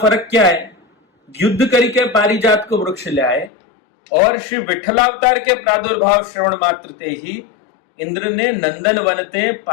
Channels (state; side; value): drops out; right; at 3.5 s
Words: क्या है, युद्ध करके पारिजात को वृक्ष ले आए और श्री विठलावतार के प्रादुर्भाव श्रवण मात्र ते ही इंद्र ने नंदन वनते